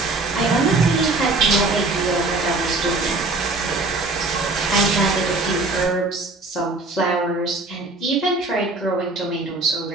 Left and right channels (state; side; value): quieter; left; 3.2 dB